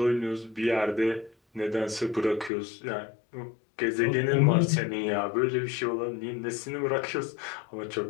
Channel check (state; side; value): drops out; right; at 2.5 s